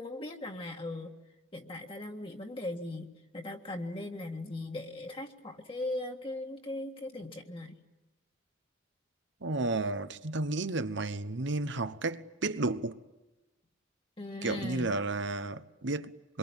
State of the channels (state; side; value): normal; both; correlation 0.27